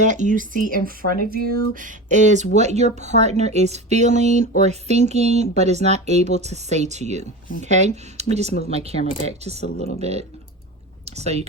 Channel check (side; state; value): both; normal; correlation 0.29